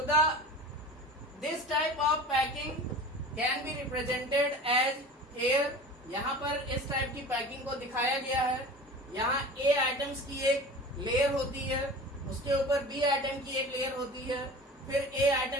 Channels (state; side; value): normal; both; correlation 0.37